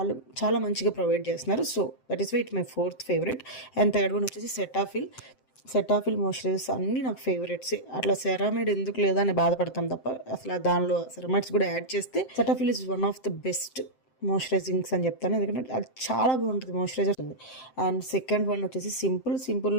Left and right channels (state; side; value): late; right; 7.7 ms